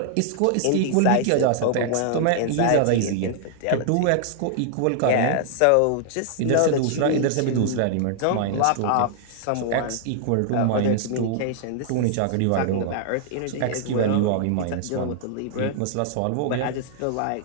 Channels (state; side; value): different; both; correlation -0.01